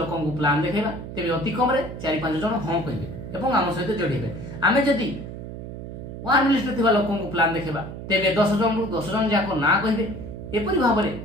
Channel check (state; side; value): noise; right; hum, 10 dB below the sound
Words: को प्लान देखेबा तेबे अति कम रे 4-5 जन हां कहबे एवं आम सहित जोड़िबे आमे जदि वार्म लिस्ट रे थिबा लोक को प्लान देखेबा तेबे 10 जन रु 10 जन जाको ना कहबे एपरि भाबरे